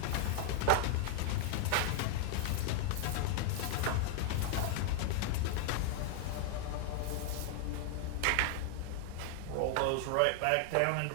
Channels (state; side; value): different; both; correlation 0.00